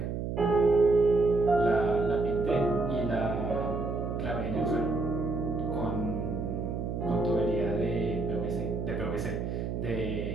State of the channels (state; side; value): noise; right; hum, 3 dB below the sound